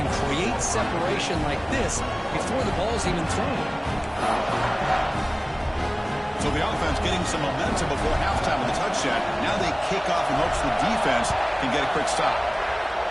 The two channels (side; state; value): both; identical; correlation 1.00